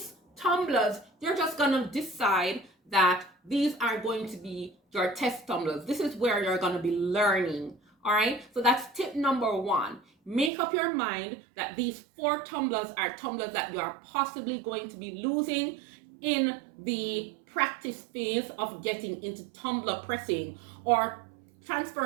tumblers, you're just gonna decide that these are going to be your test tumblers. This is where you're gonna be learning. All right, so that's tip number 1. Make up your mind that these 4 tumblers are tumblers that you are possibly going to be losing in the practice phase of getting into tumbler pressing or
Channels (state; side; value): drops out; left; at 10.5 s